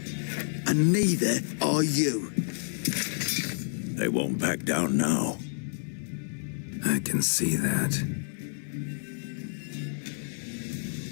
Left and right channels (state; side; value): silent; right; digital silence